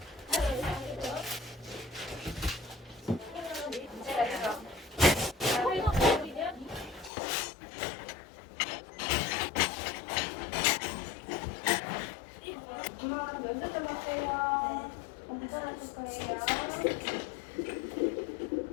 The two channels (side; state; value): right; drops out; at 7.1 s